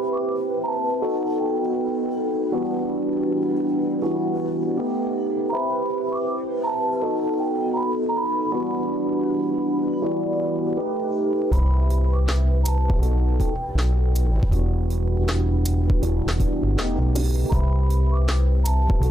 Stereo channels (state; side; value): normal; both; correlation 0.78